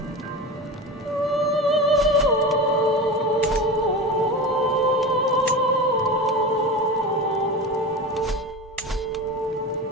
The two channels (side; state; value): both; normal; correlation 0.27